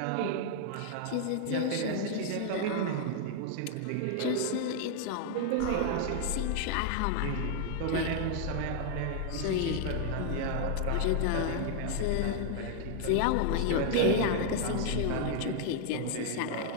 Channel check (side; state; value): both; different; correlation 0.00